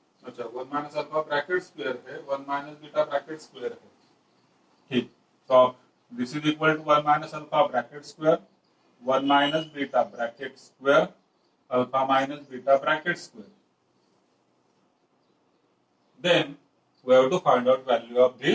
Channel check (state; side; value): identical; both; correlation 1.00